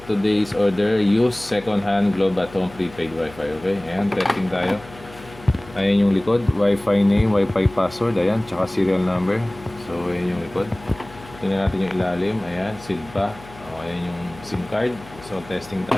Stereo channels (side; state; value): left; noise; hum, 19 dB below the sound